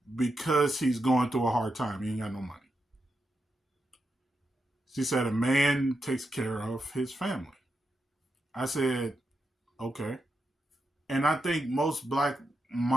because he's going through a hard time. He ain't got no money. She said a man takes care of his family. I said, okay. And I think most black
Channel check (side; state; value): both; normal; correlation 0.85